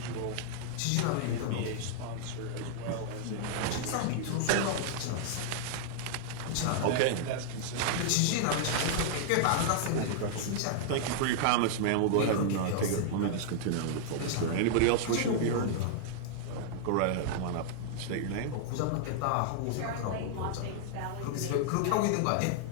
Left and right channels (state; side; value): different; both; correlation -0.01